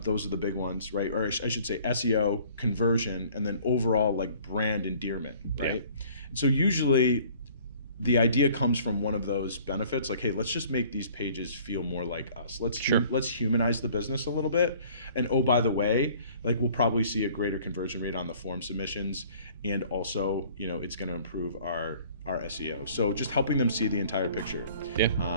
those are the big ones, right? Or I should say SEO, conversion, and then overall like brand endearment, right? Yeah. And so usually the idea comes from one of those benefits, like, hey, let's just make these pages feel more like us. Let's humanize the business a little bit. And oh, by the way, like we'll probably see a greater conversion rate on the form submissions, and also, it's going to improve our SEO. So just helping them see the entire picture, Yeah.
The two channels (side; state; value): both; inverted; correlation -0.53